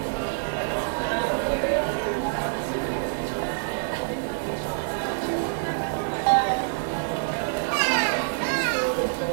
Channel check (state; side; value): silent; left; digital silence